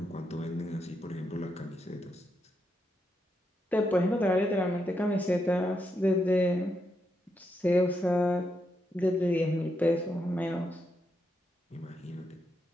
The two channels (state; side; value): normal; both; correlation 0.82